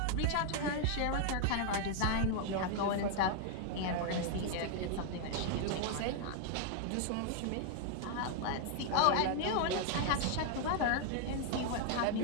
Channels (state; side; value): different; both; correlation 0.00